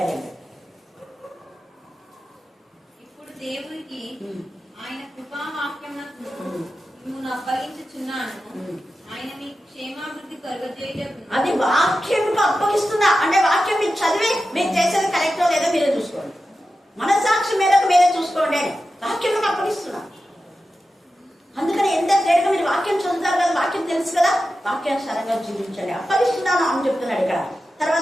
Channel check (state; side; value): normal; both; correlation 0.92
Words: ఇప్పుడు దేవునికి ఆయన కృపావాక్యమునకు మిమ్మును అప్పగించుచున్నాను. ఆయన మీకు క్షేమాభివృద్ధి కలుగజేయుటకు. అది వాక్యంకు అప్పగిస్తున్నా అంటే వాక్యం మీరు చదివి మీరు చేసేది కరెక్టో లేదో మీరే చూసుకోండి. మనసాక్షి మేరకు మీరే చూసుకోండి అని వాక్యంకు అప్పగిస్తున్నా. అందుకని ఎంత తేడుగా మీరు వాక్యం చదువుతారు కదా, వాక్యం తెలుసు కదా, వాక్యానుసారంగా జీవించండి. అప్పగిస్తున్నాను అని చెప్తున్నాడు ఇక్కడ.